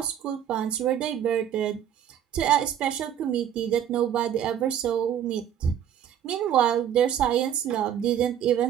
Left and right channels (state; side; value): quieter; left; 9.8 dB